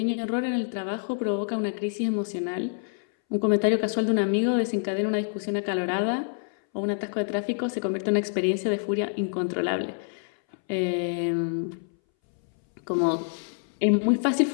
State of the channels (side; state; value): right; silent; 60 dB below the other